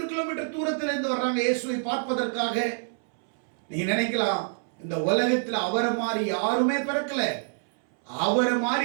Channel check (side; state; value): left; silent; 60 dB below the other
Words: கிலோமீட்டர் தூரத்தில் இருந்து வர்றாங்க இயேசுவை பார்ப்பதற்காக. நீங்க நினைக்கலாம், இந்த உலகத்தில் அவரை மாதிரி யாருமே பிறக்கல. அவரை